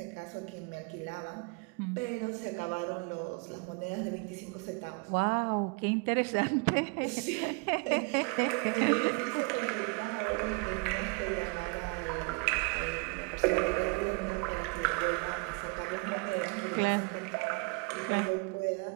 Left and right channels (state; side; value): quieter; left; 31.9 dB